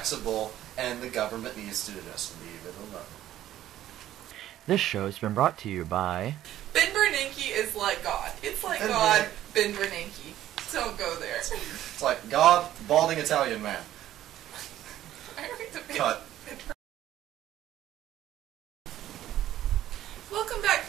and the government needs to just leave it alone. This show has been brought to you by... Ben Bernanke is like God. It's like God, Ben Bernanke. Don't go there. It's like God, balding Italian man. Cut. Welcome back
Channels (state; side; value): quieter; left; 12.9 dB